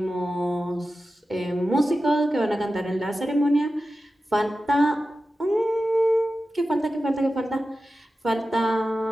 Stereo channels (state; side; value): normal; both; correlation 0.93